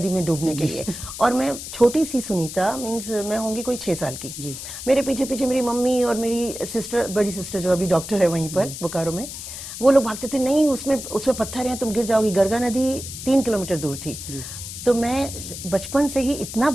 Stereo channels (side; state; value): left; noise; hiss, 9 dB below the sound